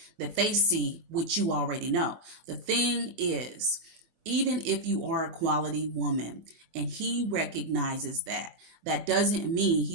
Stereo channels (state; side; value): late; left; 25 ms